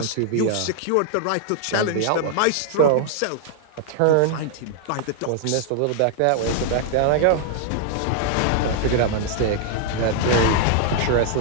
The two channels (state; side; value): different; both; correlation 0.00